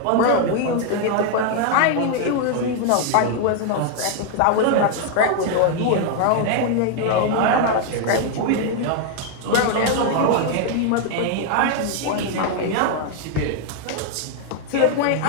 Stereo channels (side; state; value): both; different; correlation 0.00